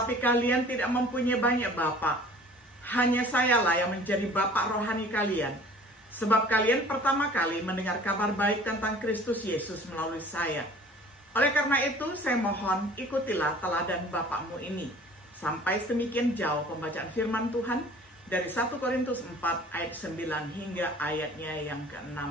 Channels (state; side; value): normal; both; correlation 0.48